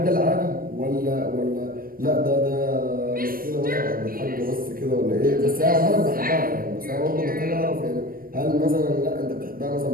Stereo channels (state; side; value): late; left; 0.42 ms